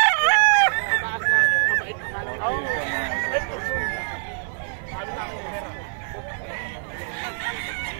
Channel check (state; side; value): silent; left; digital silence